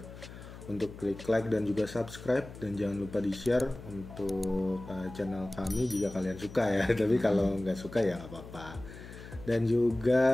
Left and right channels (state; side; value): noise; left; hum, 15 dB below the sound